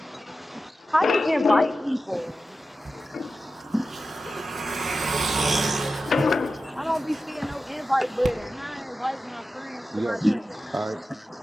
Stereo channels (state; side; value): normal; both; correlation 0.93